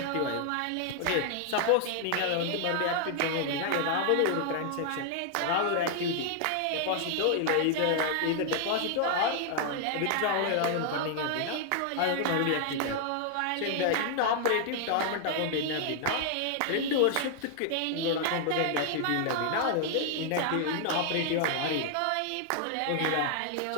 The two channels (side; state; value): both; different; correlation 0.00